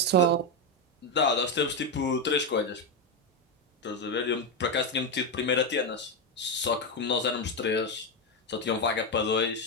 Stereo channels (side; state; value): both; normal; correlation 0.08